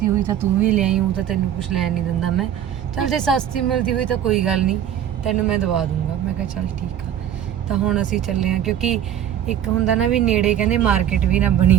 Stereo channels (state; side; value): quieter; left; 10.2 dB